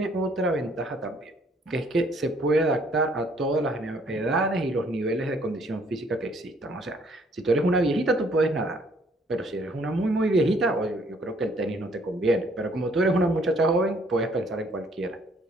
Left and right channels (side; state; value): both; normal; correlation 0.63